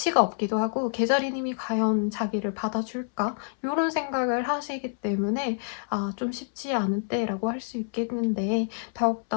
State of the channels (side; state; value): right; silent; 60 dB below the other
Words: 없기도 하고 개자리님이 과연 자기를 받아줄까? 이런 생각을 하시기 때문에 좀 쉽지 않은 때라고 할 수 있겠는데